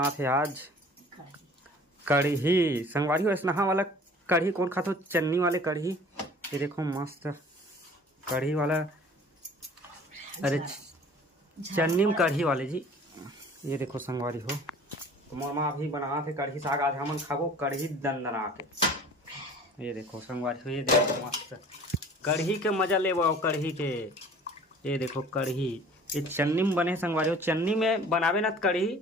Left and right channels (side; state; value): both; normal; correlation 0.48